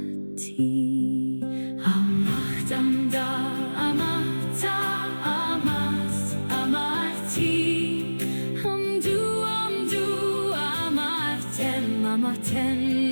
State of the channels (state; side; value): inverted; both; correlation -1.00